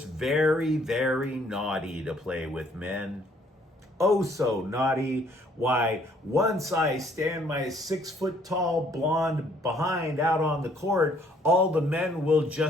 very, very naughty to play with men. Oh, so naughty. Why, once I stand my 6-foot-tall blonde behind out on the court, all the men will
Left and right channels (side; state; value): both; normal; correlation 0.63